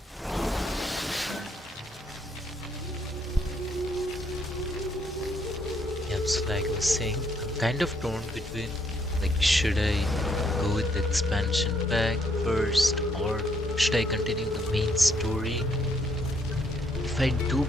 yeah, so like I was saying, I'm kind of torn between like should I go with the expansion pack first or should I continue the main story? If I do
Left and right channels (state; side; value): normal; both; correlation 0.71